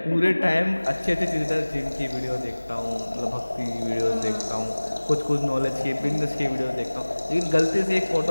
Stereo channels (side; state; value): both; inverted; correlation -1.00